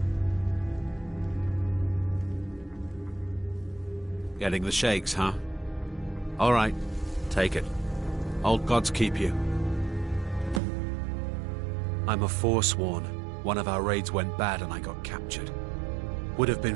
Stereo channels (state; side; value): drops out; left; at 10.6 s